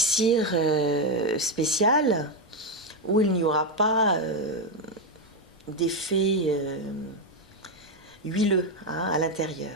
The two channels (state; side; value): normal; both; correlation 0.06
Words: spécial, où il n'y aura pas d'effet huileux à